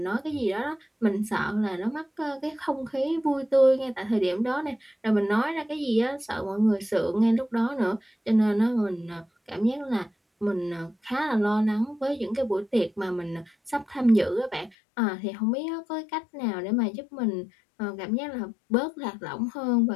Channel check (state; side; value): drops out; right; at 14.8 s